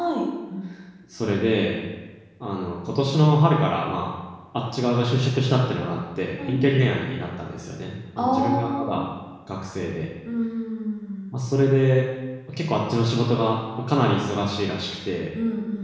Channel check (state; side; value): identical; both; correlation 1.00